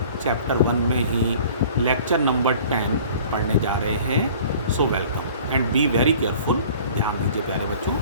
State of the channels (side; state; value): both; inverted; correlation -0.48